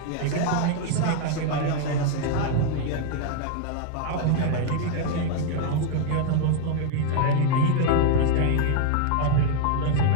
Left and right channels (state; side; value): different; both; correlation 0.00